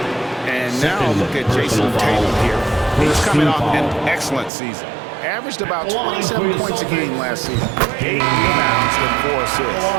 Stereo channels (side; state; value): left; drops out; at 4.5 s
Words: And now look at Jason Tatum here. He's coming off an excellent season. Averaged about 27 points a game last season. 8 rebounds and 4 assists.